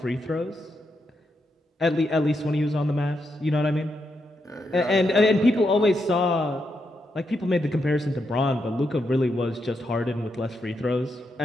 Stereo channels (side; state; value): both; normal; correlation 0.82